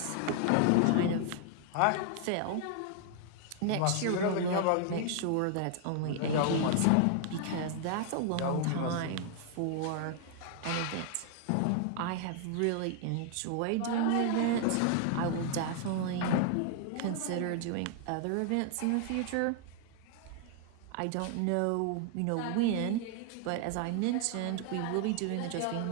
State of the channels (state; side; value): different; both; correlation 0.00